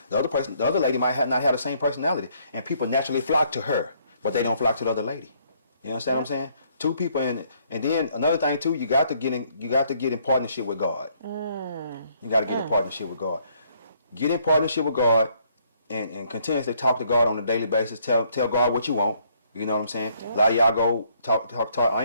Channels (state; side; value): inverted; both; correlation -0.67